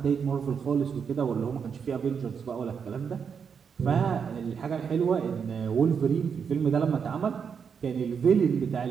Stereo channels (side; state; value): left; quieter; 6.6 dB